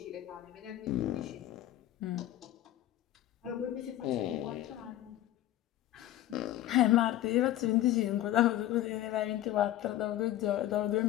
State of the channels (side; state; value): right; quieter; 13.7 dB